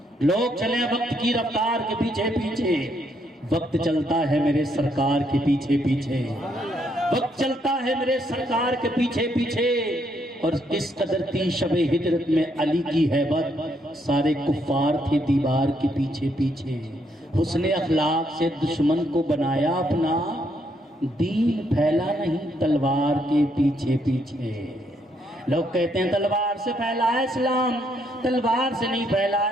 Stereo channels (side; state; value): both; normal; correlation 0.74